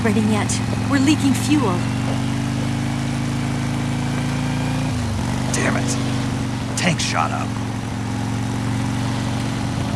yet. We're leaking fuel. Damn it. Tank shot up.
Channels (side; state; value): both; identical; correlation 1.00